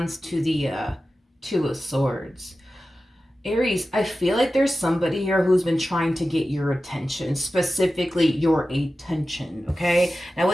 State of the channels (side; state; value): both; normal; correlation 0.94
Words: to the Two of Swords. Aries, I feel like there's somebody here who's been trying to get your attention, specifically your attention, okay? Now,